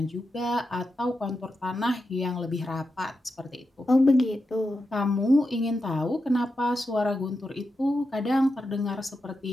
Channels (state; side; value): normal; both; correlation 0.88